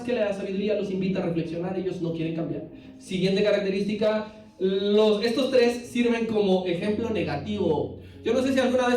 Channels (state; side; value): identical; both; correlation 1.00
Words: que la sabiduría los invita a reflexionar, ellos no quieren cambiar. Siguiente característica, estos tres sirven como ejemplo negativo. Yo no sé si alguna